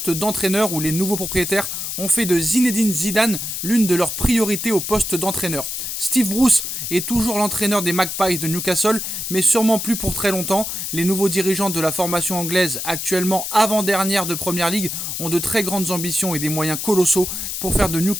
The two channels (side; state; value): left; noise; hiss, 4 dB below the sound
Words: d'entraîneur où les nouveaux propriétaires ont fait de Zinedine Zidane l'une de leurs priorités au poste d'entraîneur. Steve Bruce est toujours l'entraîneur des Magpies de Newcastle, mais sûrement plus pour très longtemps. Les nouveaux dirigeants de la formation anglaise, actuellement avant-dernière de Première Ligue, ont de très grandes ambitions et des moyens colossaux pour faire de